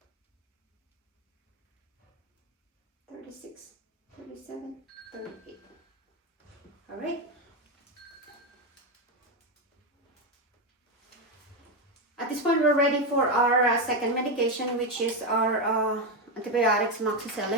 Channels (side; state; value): both; normal; correlation 0.09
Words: 36, 37, 38. All right. At this point, we're ready for our second medication, which is our antibiotics,